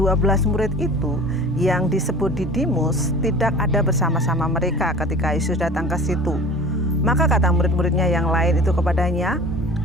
murid itu yang disebut Didimus, tidak ada bersama-sama mereka ketika Yesus datang ke situ. Maka kata murid-muridnya yang lain itu kepadanya,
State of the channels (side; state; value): both; normal; correlation 0.41